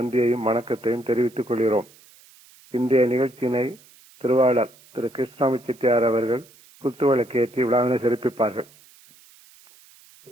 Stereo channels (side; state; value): right; noise; hiss, 26 dB below the sound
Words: வணக்கத்தையும் தெரிவித்துக் கொள்கிறோம். இன்றைய நிகழ்ச்சியினை திருவாளர் திரு கிருஷ்ணாமி செட்டியார் அவர்கள் குத்துவிளக்கு ஏற்றி விழாவினை சிறப்பிப்பார்கள்.